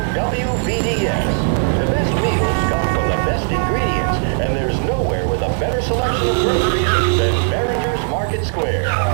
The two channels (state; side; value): silent; left; digital silence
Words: WVDS. The best meals come from the best ingredients, and there's nowhere with a better selection of groceries than Behringer's Market Square.